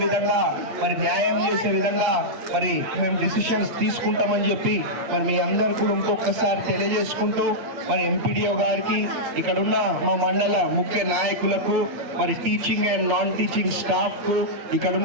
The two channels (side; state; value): left; late; 8.3 ms